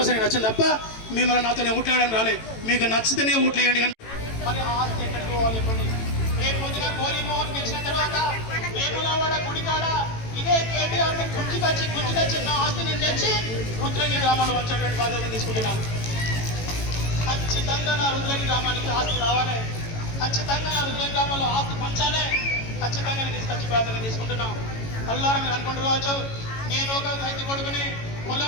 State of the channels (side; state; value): right; late; 18 ms